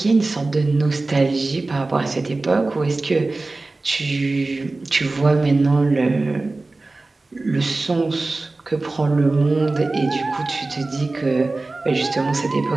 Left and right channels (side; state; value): left; quieter; 3.3 dB